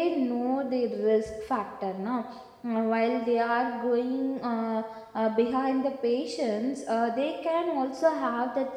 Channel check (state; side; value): identical; both; correlation 1.00